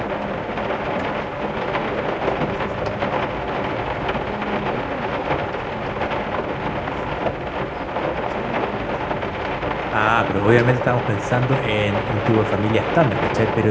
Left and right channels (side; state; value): both; identical; correlation 1.00